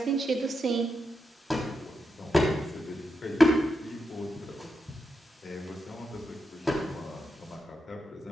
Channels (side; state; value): both; normal; correlation 0.86